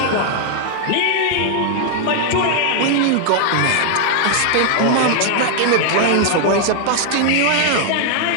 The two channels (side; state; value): both; different; correlation 0.00